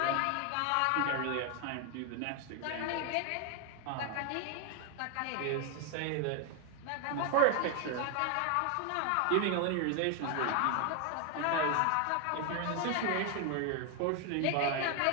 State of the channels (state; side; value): different; both; correlation 0.01